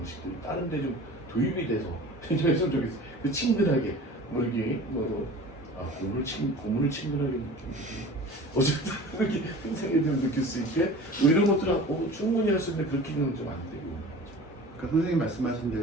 다른 데 좀 도입이 돼서 좀 했으면 좋겠어. 그 친근하게 뭐 이게 고문을 친근하게 느끼고 어쨌든 이렇게 생각이 좀 느낄 수 있게 뭐 이런 것들은 충분히 할 수 있는데 그렇게는 좀 안 되고. 그러니까 선생님 말씀하신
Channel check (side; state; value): both; normal; correlation 0.40